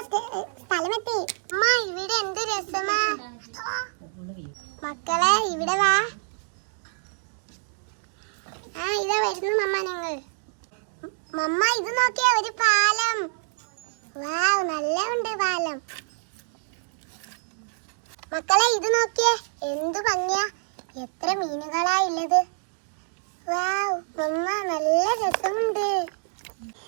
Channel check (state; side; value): silent; left; digital silence